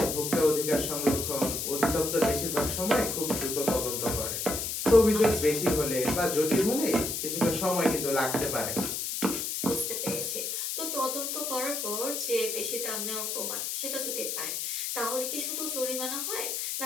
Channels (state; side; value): noise; left; hiss, 2 dB below the sound